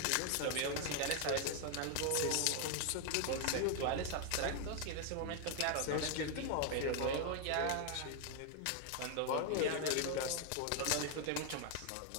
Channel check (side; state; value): both; different; correlation 0.00